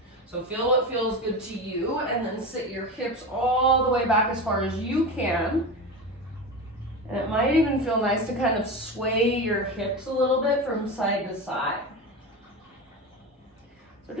So feel what feels good to you, and then sit your hips all the way back as far as you can. And it might even feel nice to kind of sway your hips a little bit from side to side. So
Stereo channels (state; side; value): normal; both; correlation 0.24